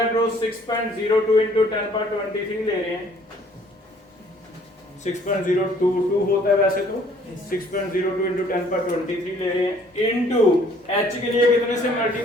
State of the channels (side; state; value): both; normal; correlation 0.59